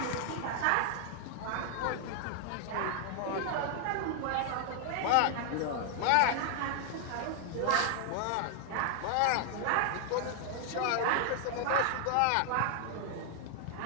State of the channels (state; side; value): different; both; correlation 0.00